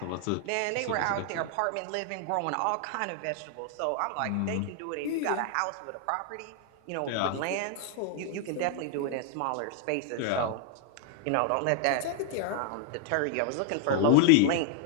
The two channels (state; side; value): different; both; correlation 0.00